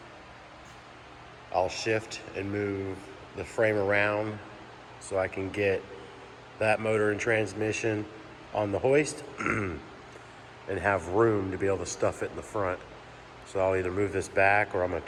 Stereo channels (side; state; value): both; identical; correlation 1.00